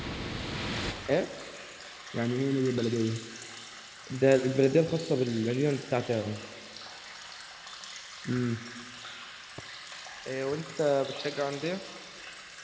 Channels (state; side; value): identical; both; correlation 1.00